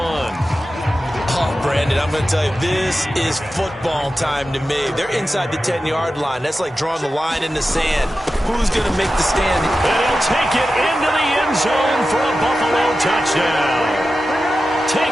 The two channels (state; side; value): normal; both; correlation 0.93